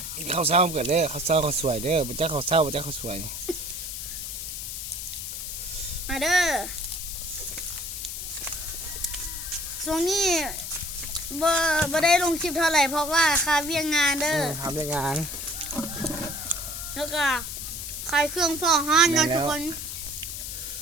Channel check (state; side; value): noise; left; hiss, 6 dB below the sound